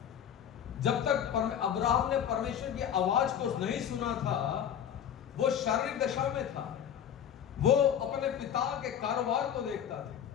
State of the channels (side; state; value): right; quieter; 9.1 dB